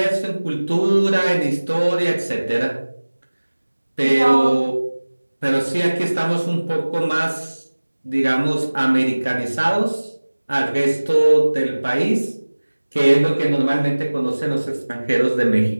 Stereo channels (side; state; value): both; inverted; correlation -1.00